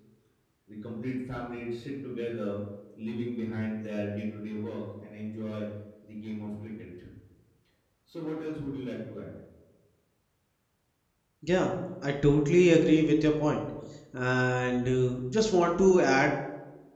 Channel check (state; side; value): identical; both; correlation 1.00